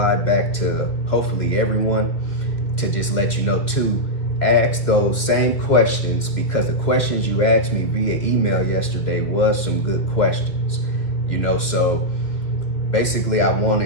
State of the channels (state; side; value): late; right; 1.8 ms